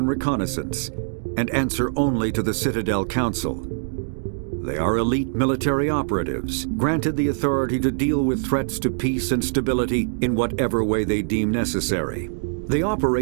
Reconnaissance, and answer only to the Citadel Council. They are elite military operatives, granted the authority to deal with threats to peace and stability in whatever way they deem necessary. They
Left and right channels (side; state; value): left; silent; digital silence